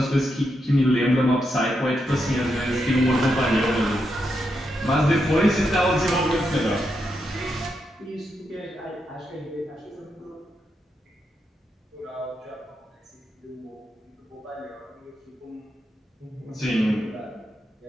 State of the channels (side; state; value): both; normal; correlation 0.83